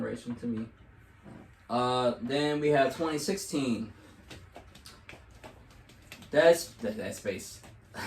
to me. Then we have 2016. That's Space.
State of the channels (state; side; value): identical; both; correlation 1.00